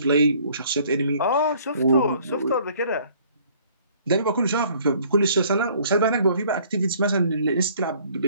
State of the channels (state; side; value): inverted; both; correlation -0.58